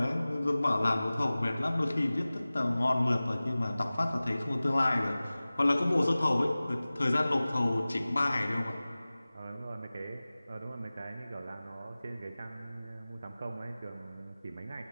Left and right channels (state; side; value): inverted; both; correlation -0.98